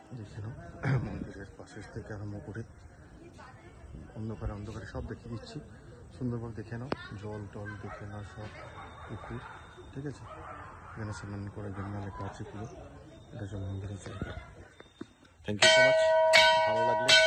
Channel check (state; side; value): identical; both; correlation 1.00